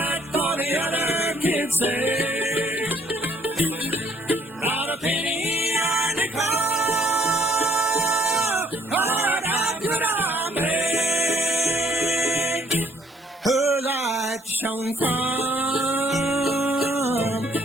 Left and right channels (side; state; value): both; normal; correlation 0.64